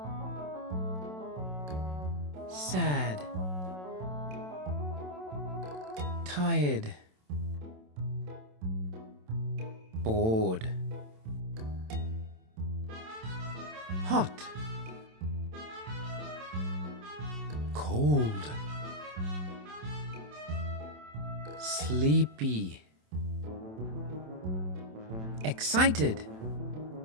sad, tired, bored, hot, cold, sleepy, excited,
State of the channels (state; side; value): late; left; 27 ms